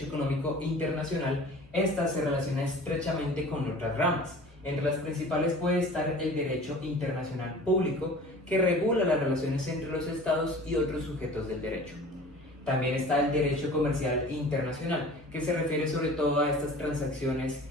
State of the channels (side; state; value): both; normal; correlation 0.43